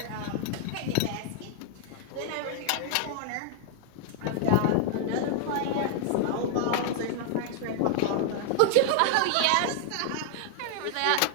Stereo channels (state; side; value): different; both; correlation 0.00